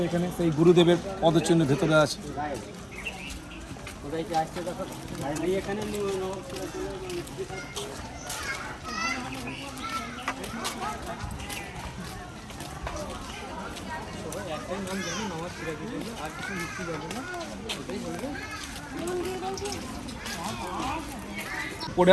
এখানে, সেই গুরুদেবের পদচিহ্ন ভেতরে আছে।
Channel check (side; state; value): both; identical; correlation 1.00